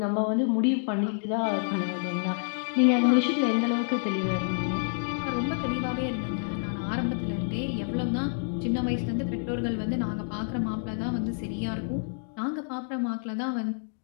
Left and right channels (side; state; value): right; silent; digital silence